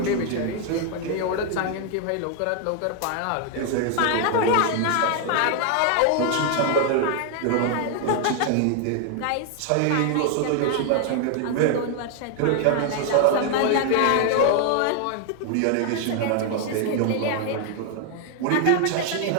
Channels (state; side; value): different; both; correlation 0.00